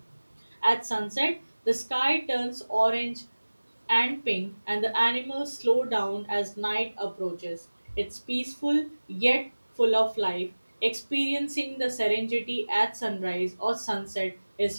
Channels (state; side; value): inverted; both; correlation -1.00